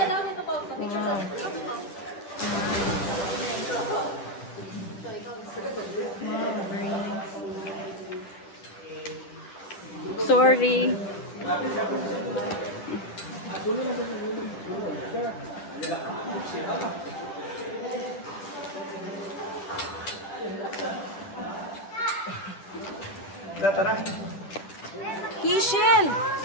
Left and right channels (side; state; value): right; late; 11 ms